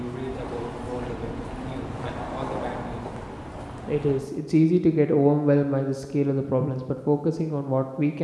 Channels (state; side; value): identical; both; correlation 1.00